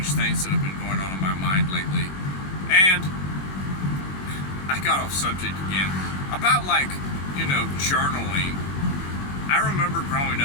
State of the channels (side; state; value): right; late; 21 ms